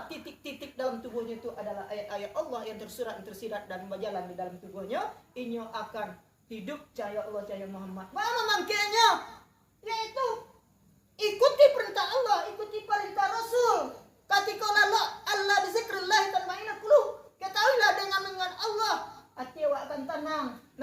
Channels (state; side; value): identical; both; correlation 1.00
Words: titik-titik dalam tubuhnya itu adalah ayat-ayat Allah yang tersurat dan tersirat dan berjalan di dalam tubuhnya, inyo akan hidup cahaya Allah, cahaya Muhammad. Apa mangkanya? Yaitu ikuti perintah Allah, ikuti perintah Rasul. Ketika Allah bizikrillah tatma'innul qulub. Ketahuilah dengan Allah hati awak akan tenang.